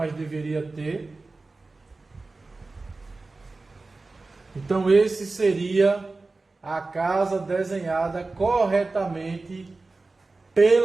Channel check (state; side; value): quieter; left; 3.5 dB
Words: deveria ter. Então, esse seria a casa desenhada corretamente